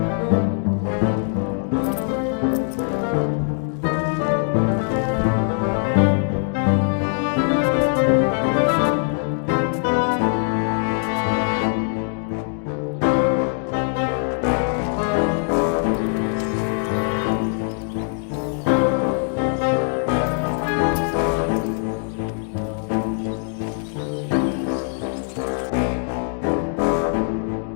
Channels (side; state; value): right; silent; 57 dB below the other